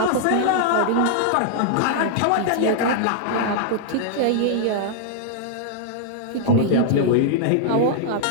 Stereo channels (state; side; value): different; both; correlation -0.01